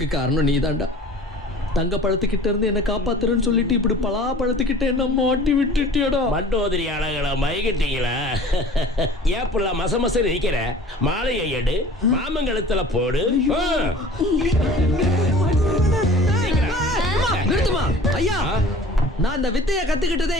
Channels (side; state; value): both; normal; correlation 0.45